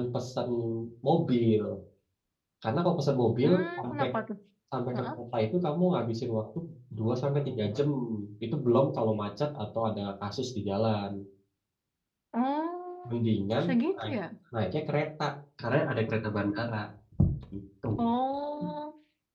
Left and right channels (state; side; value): identical; both; correlation 1.00